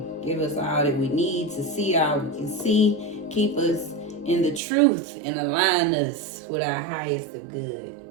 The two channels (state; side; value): drops out; left; at 4.6 s